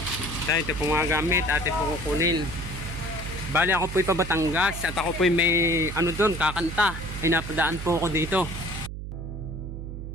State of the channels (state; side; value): noise; right; hum, 8 dB below the sound